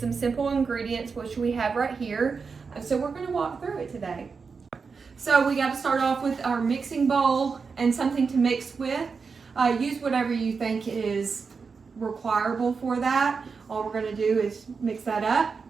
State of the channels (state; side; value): quieter; left; 5.1 dB